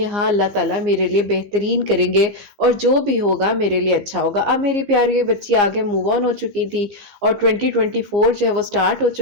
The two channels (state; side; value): late; left; 15 ms